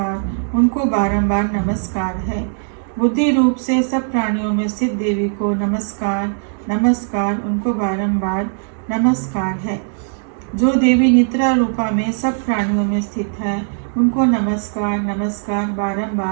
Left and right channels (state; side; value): silent; left; digital silence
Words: उनको बारंबार नमस्कार है। बुद्धि रूप से सब प्राणियों में स्थित देवी को नमस्कार, नमस्कार, उनको बारंबार नमस्कार है। जो देवी निद्रा रूपा में सब प्राणियों में स्थित है, उनको नमस्कार, नमस्कार,